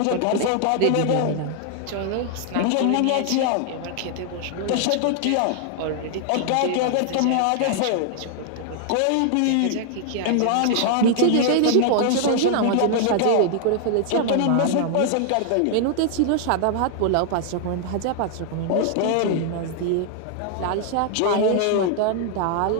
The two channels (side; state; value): both; different; correlation 0.00